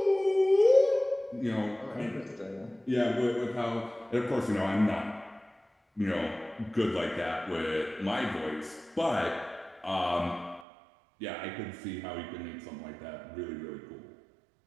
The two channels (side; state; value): left; drops out; at 10.7 s